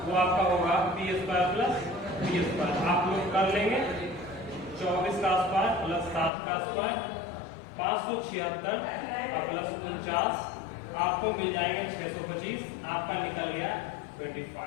वो आपका होगा P² प्लस B²। आप लोग कर लेंगे 24 का स्क्वायर प्लस 7 का स्क्वायर 576 और प्लस 49 आपको मिल जाएंगे 625। आपका निकल गया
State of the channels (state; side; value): drops out; right; at 6.3 s